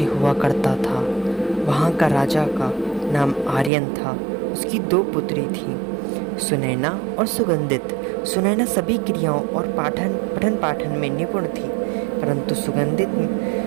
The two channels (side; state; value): left; drops out; at 3.7 s